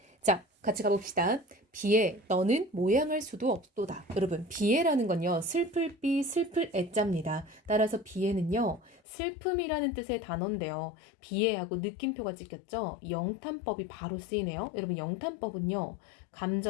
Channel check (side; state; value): right; drops out; at 9.0 s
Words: 자, 같이 가봅시다. 비에 너는 모양할 수도 없도다. 여러분, 비에라는 건요, 슬플 비, 슬플 애자입니다. 따라서 비에는요, 슬픔이라는 뜻의 단어인데요. 비에하고 느낌표가 찍혔죠? 영탄법이 바로 쓰이네요. 여러분, 영탄법은요,